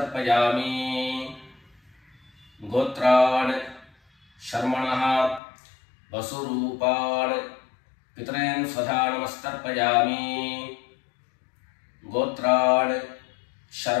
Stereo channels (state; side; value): drops out; right; at 5.4 s